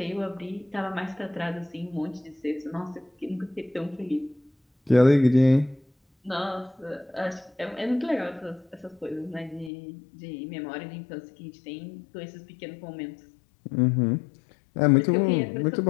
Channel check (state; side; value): drops out; right; at 9.7 s